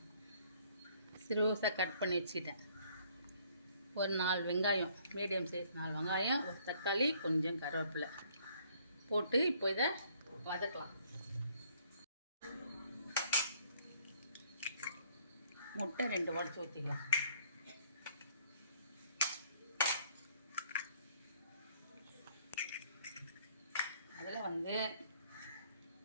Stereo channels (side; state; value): both; inverted; correlation -0.62